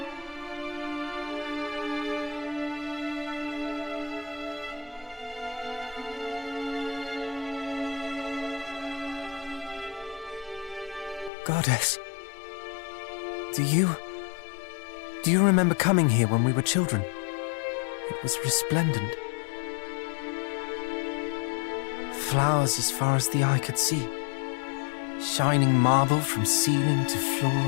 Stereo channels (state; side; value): drops out; right; at 11.3 s